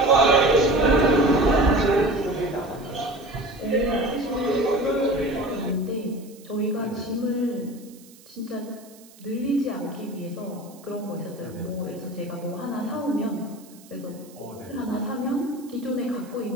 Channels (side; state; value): right; noise; hiss, 24 dB below the sound